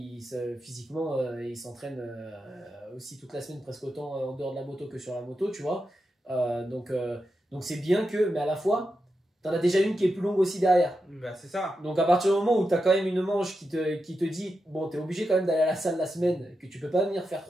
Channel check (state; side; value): normal; both; correlation 0.88